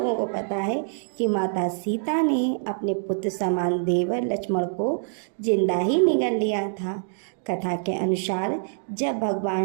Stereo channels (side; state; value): left; silent; digital silence